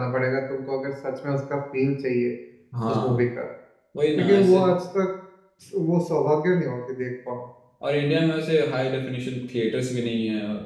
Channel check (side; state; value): both; identical; correlation 1.00